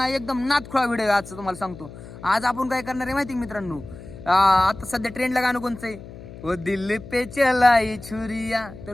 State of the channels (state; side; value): noise; left; hum, 15 dB below the sound